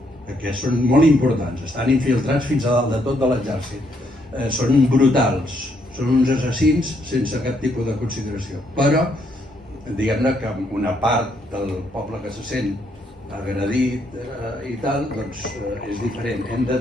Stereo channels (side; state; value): both; normal; correlation 0.73